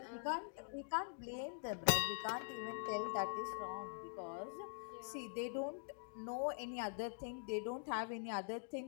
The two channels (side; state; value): right; silent; digital silence